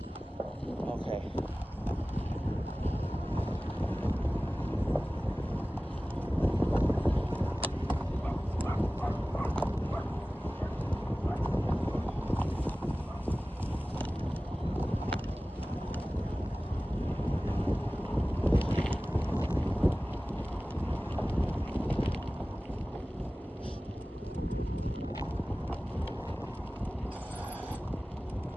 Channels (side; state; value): both; normal; correlation 0.97